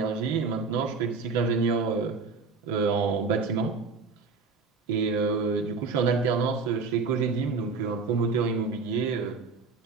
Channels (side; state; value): left; quieter; 4.5 dB